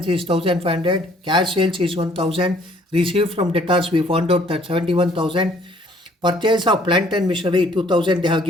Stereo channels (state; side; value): normal; both; correlation 0.60